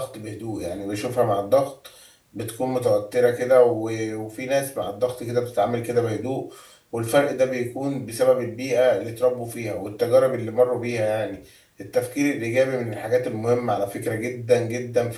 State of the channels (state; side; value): identical; both; correlation 1.00